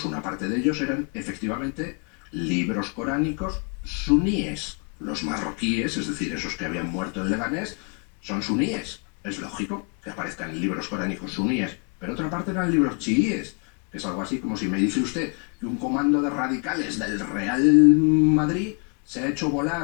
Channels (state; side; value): quieter; right; 36.4 dB